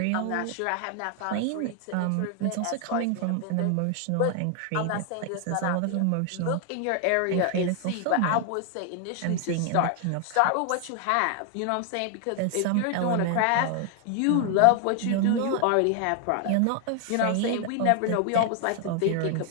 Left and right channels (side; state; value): both; different; correlation 0.00